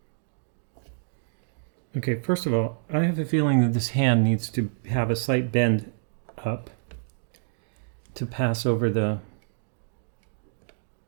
Okay, first of all, I have a feeling that this hand needs to have a slight bend up to pass over the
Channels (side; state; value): left; silent; digital silence